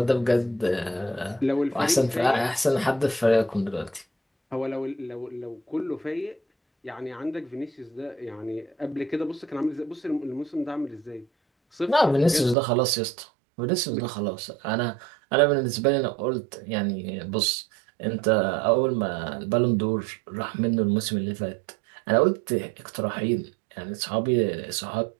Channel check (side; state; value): left; drops out; at 12.6 s